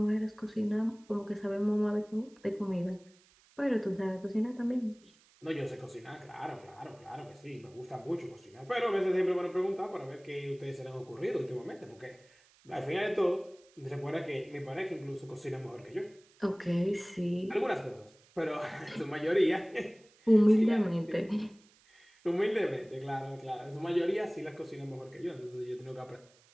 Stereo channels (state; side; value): noise; right; hiss, 29 dB below the sound